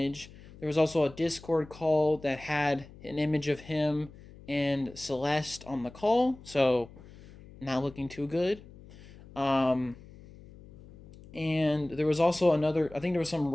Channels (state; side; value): noise; left; hum, 20 dB below the sound